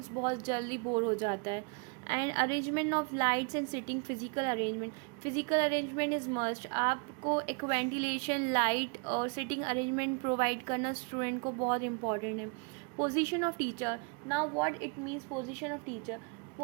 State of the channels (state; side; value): quieter; left; 34.4 dB